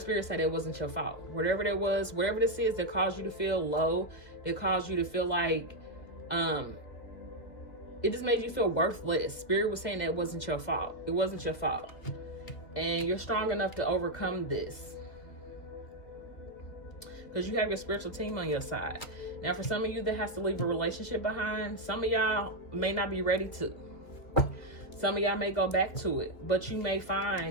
say that it wasn't your fault. Whatever that was, whatever this is that caused you to feel low, that caused you to feel like it just made you feel worthless. Spirit was saying that it wasn't your fault. It wasn't your fault. And you're strong enough to overcome this, because you have your spiritual team on your side. Now, for some of you that has to leave a relationship behind, some of y'all may not be ready to. Some of y'all may go back to it, but you may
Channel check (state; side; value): late; right; 2.2 ms